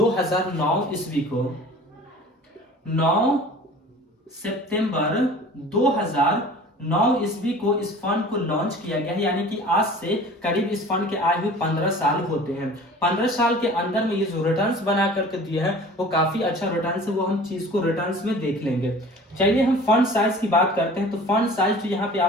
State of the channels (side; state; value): both; normal; correlation 0.44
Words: ईस्वी को। 9 सितंबर 2009 ईस्वी को इस फंड को लॉन्च किया गया है। यानी कि आज से करीब इस फंड के आए हुए 15 साल होते हैं। 15 साल के अंदर में ये जो रिटर्न्स बना करके दिया है वो काफी अच्छा रिटर्न्स है, वो हम चीज को रिटर्न्स में देख लेंगे। चलिए हम फंड साइज की बात करते हैं। तो फंड साइज जो यहाँ पे